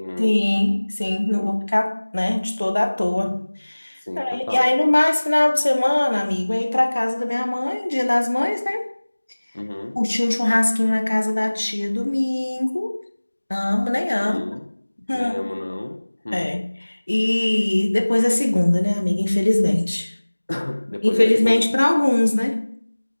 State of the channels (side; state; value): both; inverted; correlation -1.00